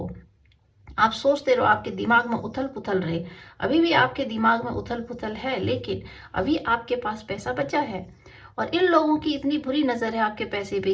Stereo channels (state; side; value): identical; both; correlation 1.00